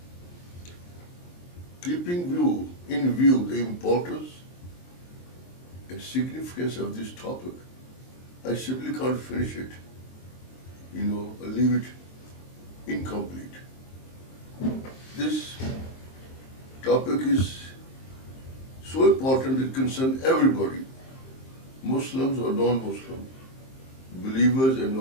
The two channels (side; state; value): right; late; 23 ms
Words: Keeping in view the importance and significance of this topic, I simply can't finish it, or leave it incomplete. This topic is so important it concerns everybody, Muslims or non-Muslims, believers and